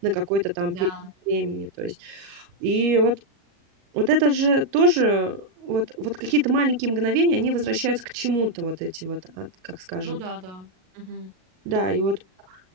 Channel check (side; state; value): left; late; 38 ms